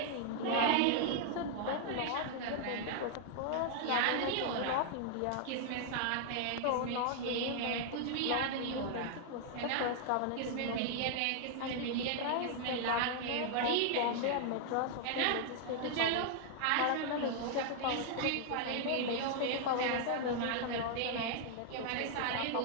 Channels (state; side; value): different; both; correlation 0.00